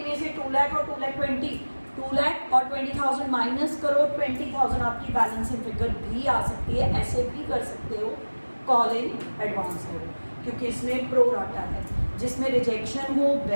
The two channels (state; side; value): inverted; both; correlation -1.00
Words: में से 2 लाख और 2,20,000, 2 लाख और 20,000 माइनस करो, 20,000 आपकी बैलेंसिंग फिगर भी आ सकती है। ऐसे भी कर सकते हो कॉल इन एडवांस हो, क्योंकि इसमें प्रो राटा है। जिसमें रिजेक्शन हो